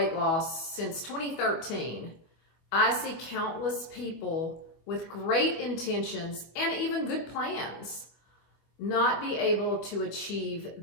loss since 2013, I see countless people with great intentions and even good plans not be able to achieve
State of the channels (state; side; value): late; right; 25 ms